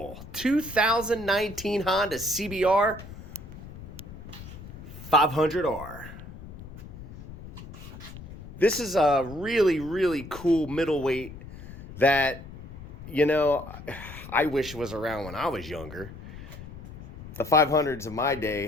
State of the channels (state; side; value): noise; left; rumble, 14 dB below the sound